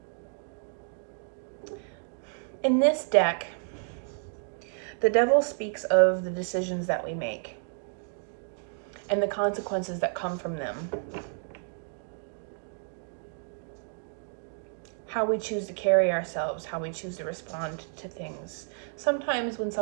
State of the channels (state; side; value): silent; left; 58 dB below the other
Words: In this deck, the Devil speaks of the decisions that we make and the consequences that come from them. How we choose to carry ourselves, how we choose to respond to things. Sometimes when